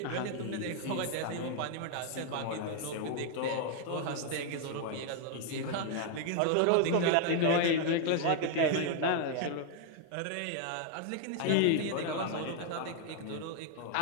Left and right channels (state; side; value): different; both; correlation 0.00